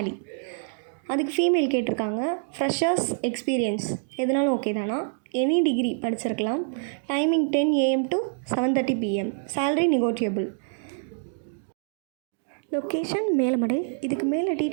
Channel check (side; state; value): left; silent; digital silence